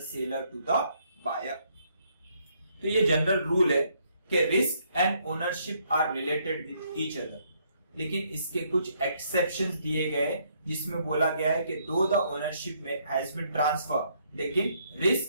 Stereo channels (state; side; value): inverted; both; correlation -0.70